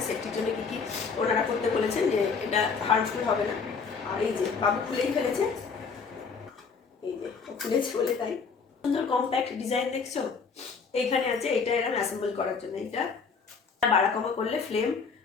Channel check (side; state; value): right; quieter; 5.3 dB